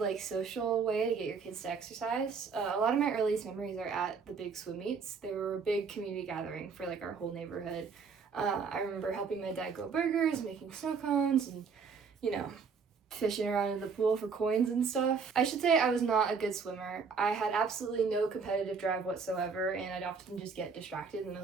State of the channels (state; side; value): quieter; left; 5.4 dB